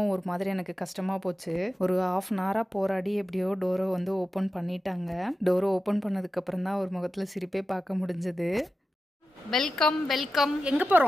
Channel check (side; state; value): both; normal; correlation 0.93